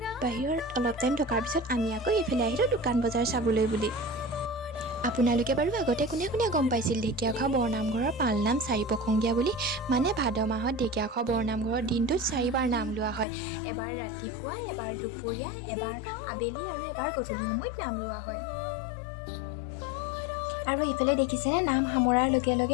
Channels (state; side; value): drops out; right; at 13.2 s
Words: বাহিৰত অলপ টাইম থকাৰ পিছত আমি আকৌ এইফালে আহিলোঁ দোকান বজাৰ চাবলৈ বুলি। আপোনালোকে বাৰু আগতে কোনে কোনে গম পাইছিল ঢেকীয়াখোৱা বৰনামঘৰৰ পালনাম 4 প্ৰসংগীয়া বুলি? মানে ভাদ মাহত ঢেকীয়াখোৱা বৰনামঘৰৰ দিনটোত 4বাৰ নাম লোৱা হয়। এবাৰ ৰাতিপুৱা, এবাৰ দুপৰীয়া, এবাৰ আবেলি আৰু এবাৰ গধূলি সময়ত নাম লোৱা হয়। আৰু ইফালে দেখিছেনে নাম সামৰাৰ লগে